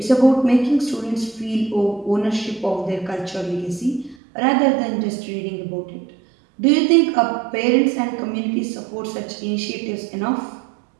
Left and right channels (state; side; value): drops out; left; at 4.2 s